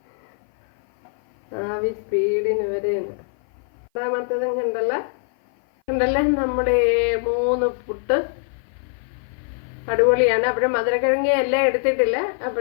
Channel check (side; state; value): right; silent; 56 dB below the other